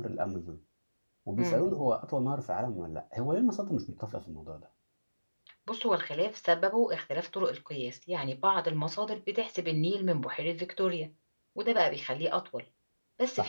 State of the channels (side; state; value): both; inverted; correlation -1.00